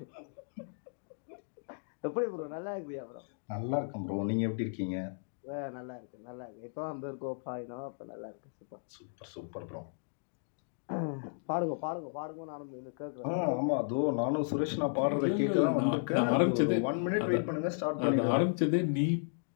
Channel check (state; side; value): silent; right; digital silence